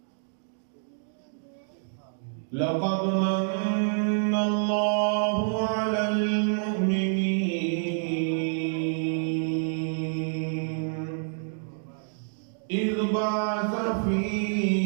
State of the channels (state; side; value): silent; left; digital silence